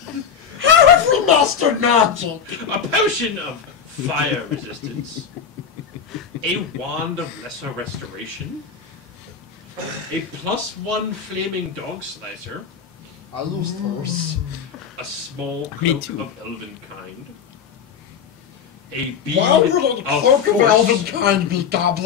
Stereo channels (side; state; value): right; quieter; 7.1 dB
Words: How have we mastered magic? a potion of fire resistance, a wand of lesser restoration, a +1 flaming dog slicer, I lose first. a small cloak of elven kind, a bead Why would a of cloak of elven force. kind be